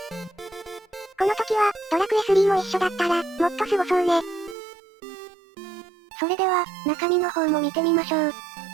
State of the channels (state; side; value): drops out; left; at 4.5 s